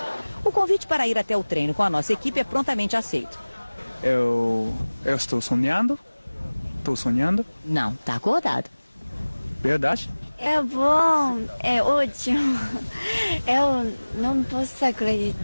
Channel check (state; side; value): inverted; both; correlation -1.00